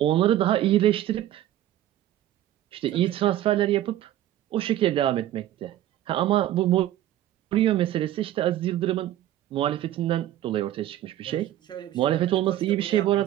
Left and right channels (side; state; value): left; quieter; 13.1 dB